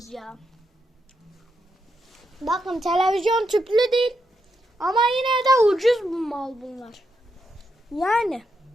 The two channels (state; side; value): normal; both; correlation 0.82